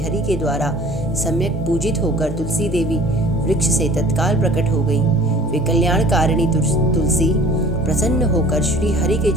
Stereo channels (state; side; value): normal; both; correlation 0.48